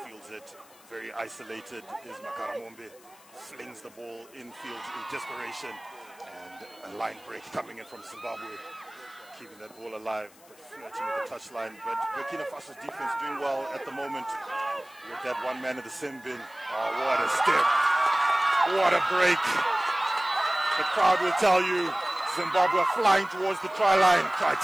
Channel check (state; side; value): noise; left; hiss, 25 dB below the sound